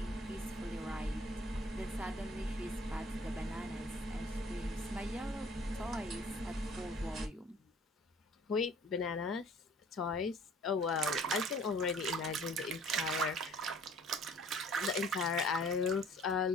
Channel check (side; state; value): both; normal; correlation 0.53